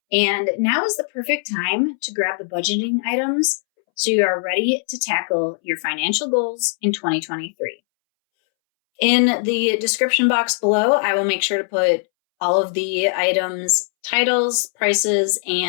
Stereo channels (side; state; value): right; silent; 64 dB below the other